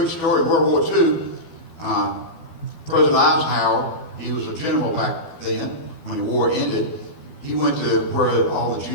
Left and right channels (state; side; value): late; right; 12 ms